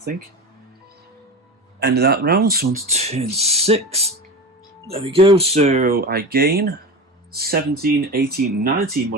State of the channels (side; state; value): both; normal; correlation 0.26